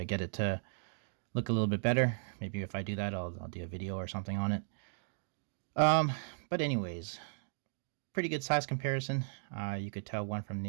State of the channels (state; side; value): silent; left; digital silence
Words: get it to look a little bit better. Maybe if I do that, I'll do a video or something on it. Um, but anyways, pretty good size comparison. You could tell one from